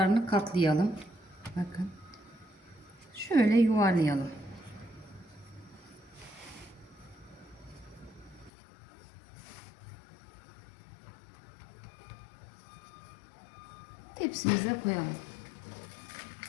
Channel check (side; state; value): right; drops out; at 8.5 s